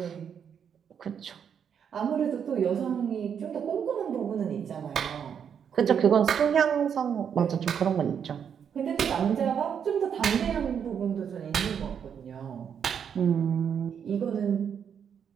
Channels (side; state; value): left; quieter; 7.8 dB